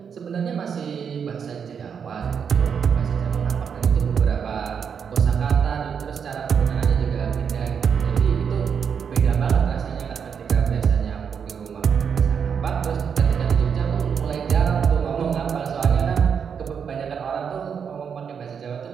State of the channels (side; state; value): left; quieter; 7.0 dB